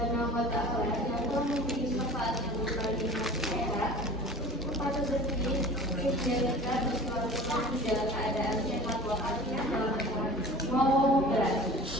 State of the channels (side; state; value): both; normal; correlation 0.41